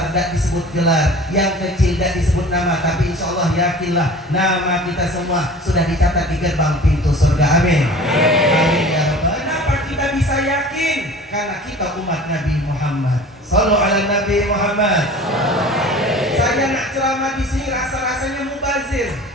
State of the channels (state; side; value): normal; both; correlation 0.42